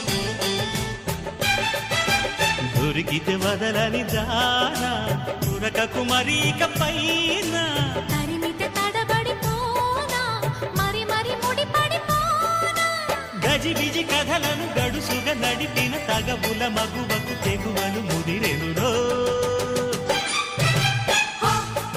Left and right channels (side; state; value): both; identical; correlation 1.00